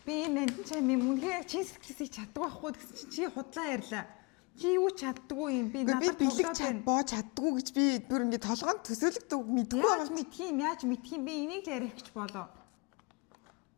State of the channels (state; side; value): quieter; right; 29.2 dB